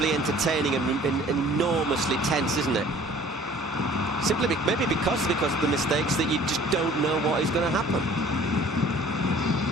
entertaining and enormously tense, isn't it? Simply maybe because of the mistakes that you just don't know what is going to happen.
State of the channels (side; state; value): both; normal; correlation 0.51